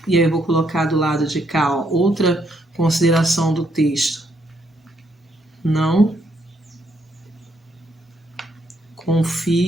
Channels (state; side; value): normal; both; correlation 0.74